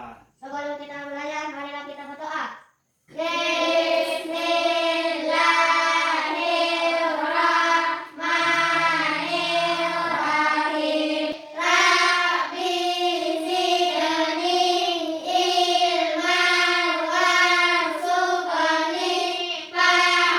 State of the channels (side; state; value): both; identical; correlation 1.00